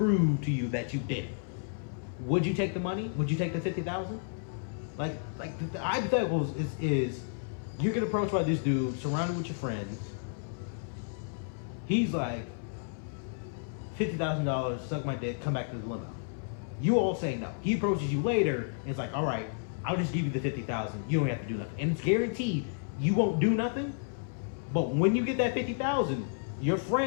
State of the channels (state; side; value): silent; right; 57 dB below the other